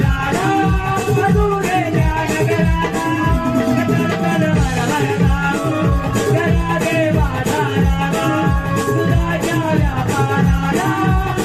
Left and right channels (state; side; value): identical; both; correlation 1.00